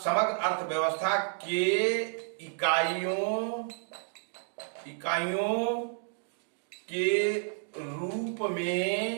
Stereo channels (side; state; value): left; silent; 57 dB below the other